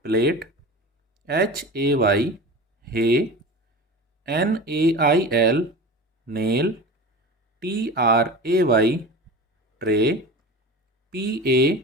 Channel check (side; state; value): both; normal; correlation 0.33